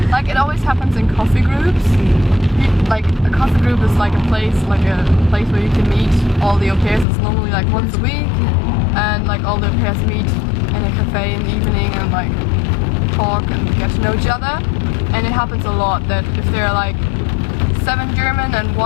like it always happens in coffee groups. Like a coffee group is like a place where you can meet all the au pairs. It's normally like once a week, and like all the au pairs meet in a cafe in the evening and like talk and get to know each other. And it happens a lot that if there are like 7 German and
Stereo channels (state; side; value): drops out; right; at 7.1 s